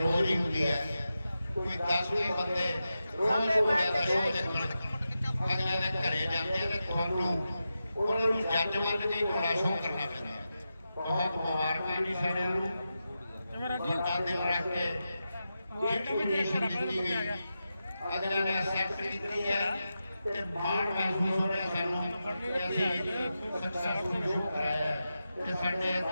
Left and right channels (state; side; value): inverted; both; correlation -0.90